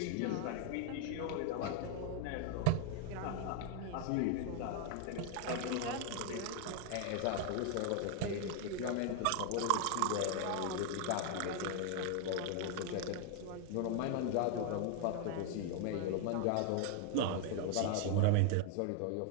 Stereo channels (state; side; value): different; both; correlation 0.00